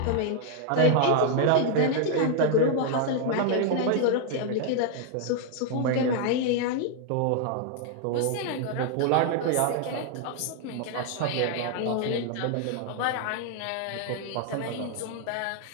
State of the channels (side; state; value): both; different; correlation 0.00